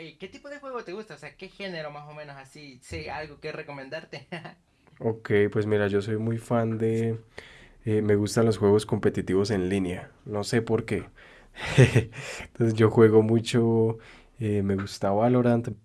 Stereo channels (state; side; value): identical; both; correlation 1.00